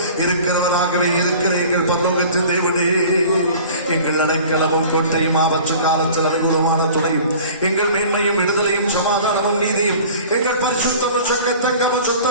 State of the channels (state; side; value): inverted; both; correlation -0.43